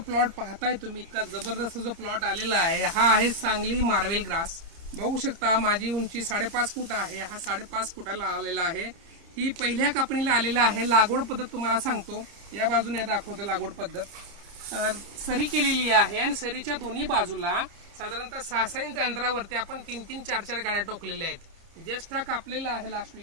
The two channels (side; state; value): left; late; 30 ms